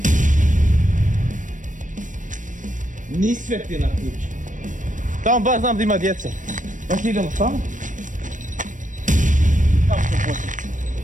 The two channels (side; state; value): left; late; 0.37 ms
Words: Ni sveti na kući. Tamo baš znam da ima djece. Baš idemo tamo. Tamo ćemo početi.